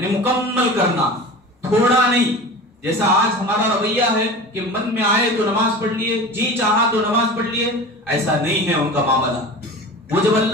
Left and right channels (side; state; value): both; normal; correlation 0.34